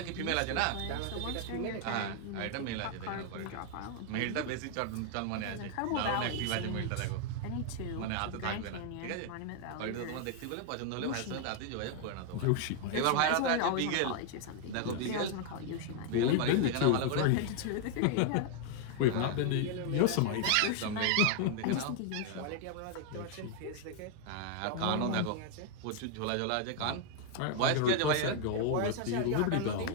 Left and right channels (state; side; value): different; both; correlation 0.00